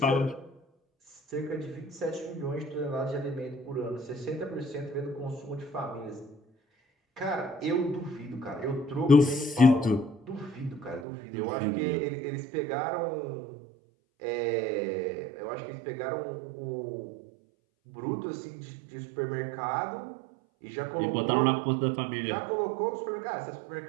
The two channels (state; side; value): drops out; left; at 11.1 s